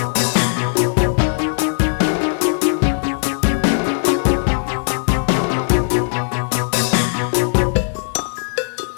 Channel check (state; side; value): silent; right; 67 dB below the other